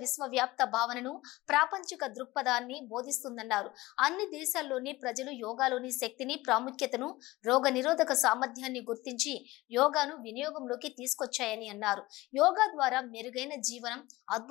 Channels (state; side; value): quieter; right; 19.4 dB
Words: విశ్వవ్యాప్త భావనను, ప్రాపంచిక దృక్పథాన్ని బోధిస్తుందన్నారు. అన్ని దేశాల్లోని ప్రజలు యోగాలోని శక్తిని, ప్రాముఖ్యతను, రోగ నిరోధక సామర్థ్యాన్ని గుర్తించి యోగాను వినియోగంలోకి తీసుకొచ్చాయని అన్నారు. యోగా ద్వారా మెరుగైన జీవనం,